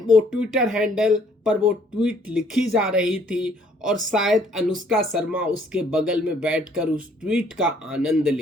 वो ट्विटर हैंडल पर वो ट्वीट लिखी जा रही थी और शायद अनुष्का शर्मा उसके बगल में बैठकर उस ट्वीट का आनंद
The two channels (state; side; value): normal; both; correlation 0.62